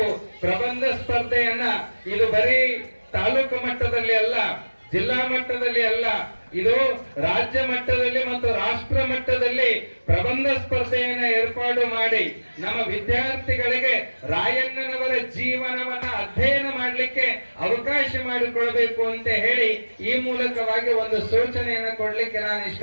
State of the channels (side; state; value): both; inverted; correlation -1.00